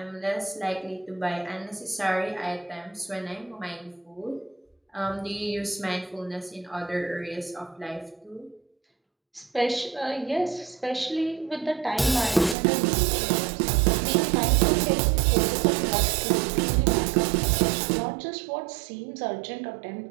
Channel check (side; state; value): left; drops out; at 12.6 s